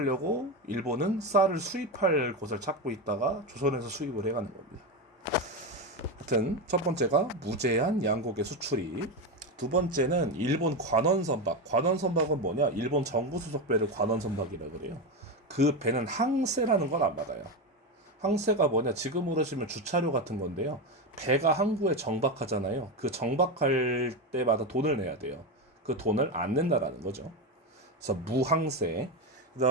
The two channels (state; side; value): normal; both; correlation 0.14